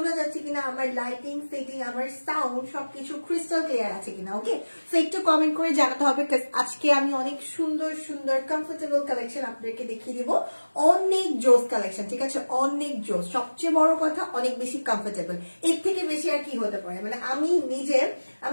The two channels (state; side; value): inverted; both; correlation -1.00